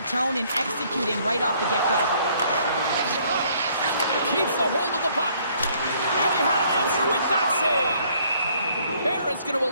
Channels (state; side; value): inverted; both; correlation -0.63